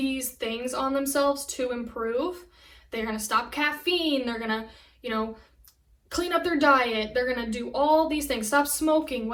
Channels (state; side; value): identical; both; correlation 1.00